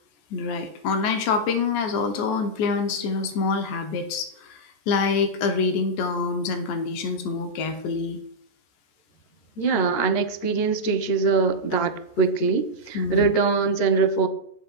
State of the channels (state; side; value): late; right; 14 ms